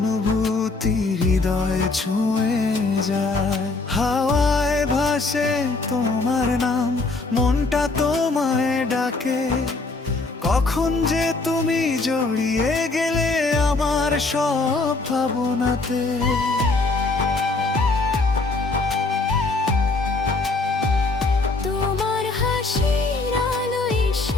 হৃদয় ছুঁয়ে যায়। হাওয়ায় ভাসে তোমার নাম, মনটা তোমায় ডাকে, কখন যে তুমি জড়িয়ে গেলে আমার সব ভাবনাতে। তোমার হাসির আলো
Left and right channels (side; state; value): right; quieter; 3.5 dB